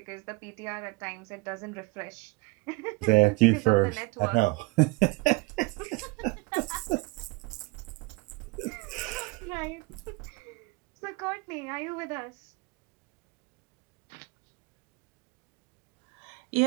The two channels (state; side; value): quieter; left; 24.3 dB